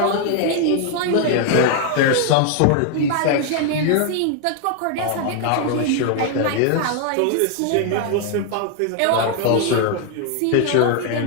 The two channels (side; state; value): both; different; correlation 0.00